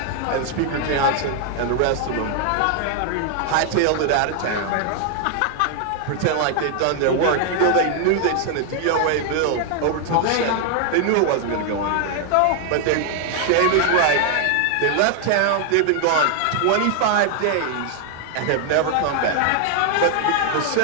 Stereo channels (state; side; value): different; both; correlation 0.00